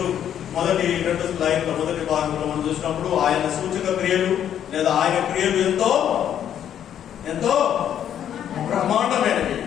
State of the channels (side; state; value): right; quieter; 9.8 dB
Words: మొదటి రెండు స్లైడ్ల మొదటి భాగంలో మనం చూసినప్పుడు ఆయన సూచక క్రియలు లేదా ఆయన క్రియలు ఎంతో ఎంతో బ్రహ్మాండమైనవి,